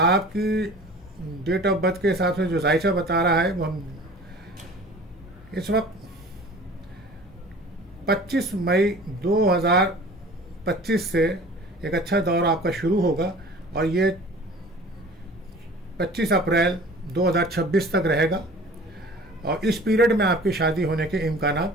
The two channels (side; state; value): both; normal; correlation 0.44